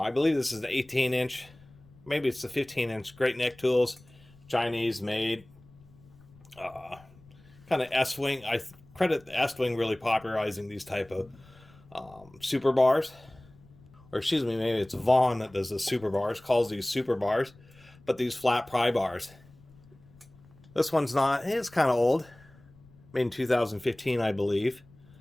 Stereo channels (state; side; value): noise; left; rumble, 25 dB below the sound